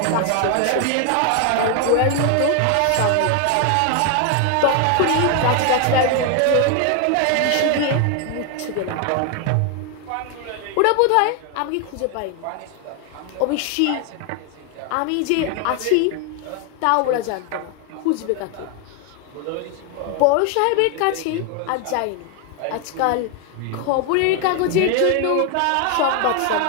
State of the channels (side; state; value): both; different; correlation 0.01